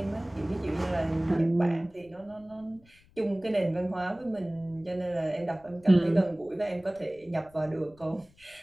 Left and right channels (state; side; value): noise; left; rumble, 28 dB below the sound